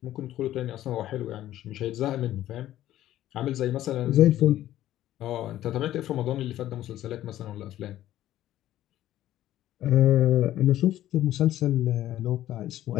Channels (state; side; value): quieter; right; 13.4 dB